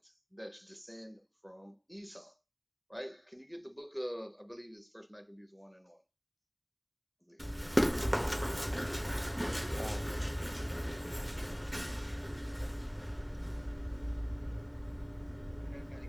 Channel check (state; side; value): identical; both; correlation 1.00